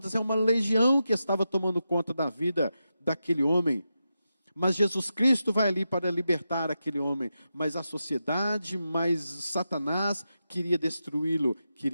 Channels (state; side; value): inverted; both; correlation -0.89